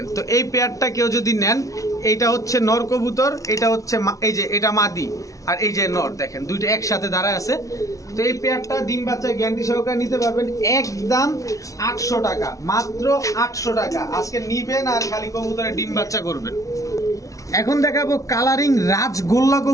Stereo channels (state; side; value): late; right; 0.16 ms